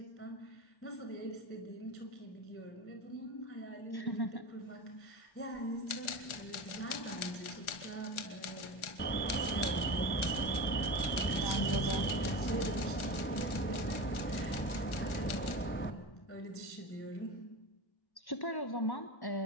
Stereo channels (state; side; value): late; right; 1.4 ms